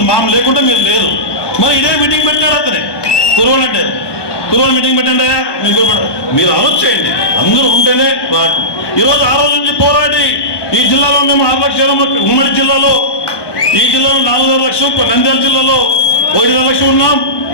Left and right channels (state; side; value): late; right; 1.2 ms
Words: మామ లేకుంటే మీరు లేరు. మరి ఇదే మీటింగ్ పెట్టాడు అతనే కురవాలంటే కురవాళ్ళు మీటింగ్ పెట్టండి. మీరు ఆలోచన చేయండి, అందరూ ఉంటేనే. ఈరోజు ఆ రోజు నుంచి పోరాడి ఈ జిల్లాలో మేము 6 లక్షల, ఉమ్మడి జిల్లాలో ఈ జిల్లాలో 4.5 లక్షలు, నంద్యాల జిల్లాలో 1.5 లక్షలు ఉన్నాం.